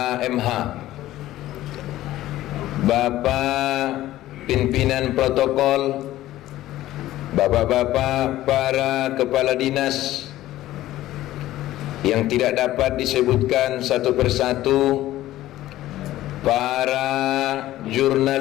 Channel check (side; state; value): right; quieter; 14.9 dB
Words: Bapak pimpinan protokol, bapak-bapak para kepala dinas yang tidak dapat disebutkan satu persatu, para